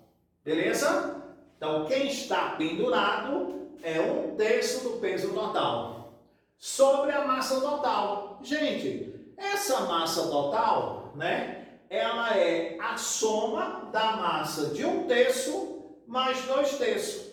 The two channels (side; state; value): both; identical; correlation 1.00